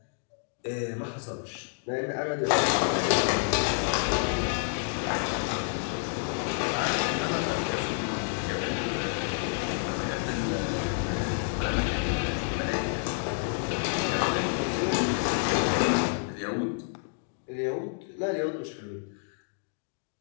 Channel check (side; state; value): right; silent; digital silence